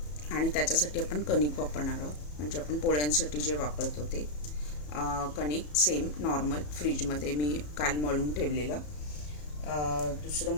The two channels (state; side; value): late; right; 34 ms